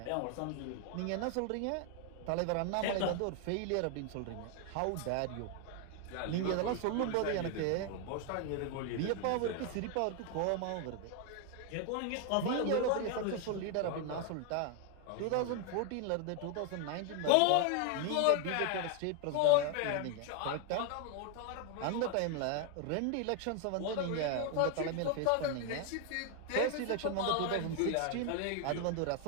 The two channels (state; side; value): different; both; correlation 0.01